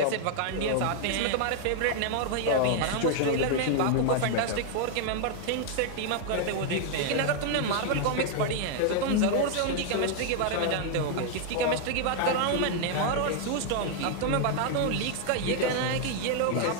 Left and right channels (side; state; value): both; different; correlation 0.00